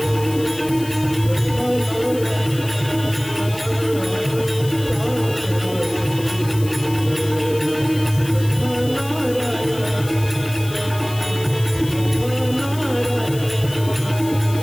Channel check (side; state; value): left; noise; hiss, 15 dB below the sound